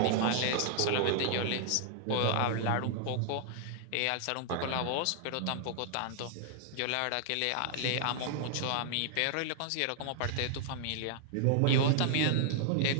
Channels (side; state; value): both; different; correlation -0.01